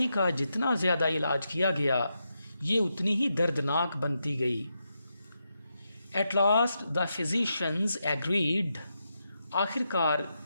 का जितना ज़्यादा इलाज किया गया ये उतनी ही दर्दनाक बनती गई। At last the physicians agreed. आखिरकार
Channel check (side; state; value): both; inverted; correlation -0.85